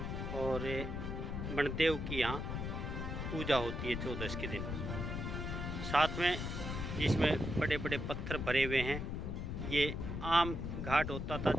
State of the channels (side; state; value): left; noise; rumble, 4 dB below the sound